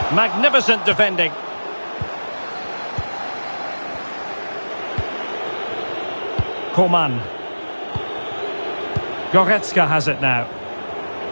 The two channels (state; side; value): inverted; both; correlation -1.00